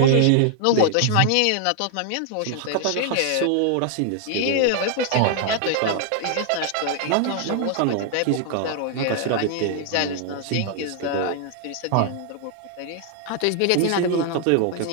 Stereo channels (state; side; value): different; both; correlation 0.00